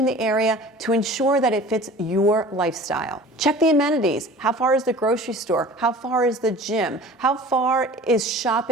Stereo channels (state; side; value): normal; both; correlation 0.43